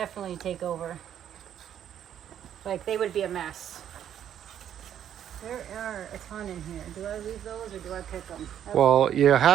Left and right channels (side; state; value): left; quieter; 10.0 dB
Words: take over. Like they would be a mess. There are a ton in here. Do I leave those or do I pick them? Well, you